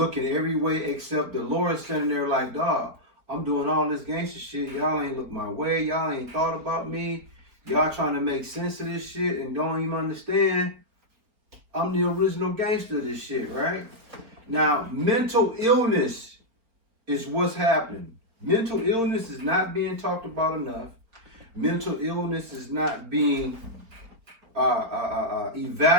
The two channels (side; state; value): left; late; 4.2 ms